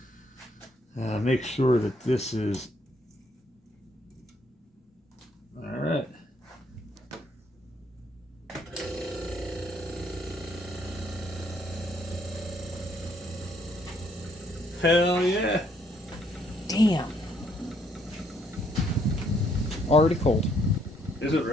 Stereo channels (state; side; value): normal; both; correlation 0.69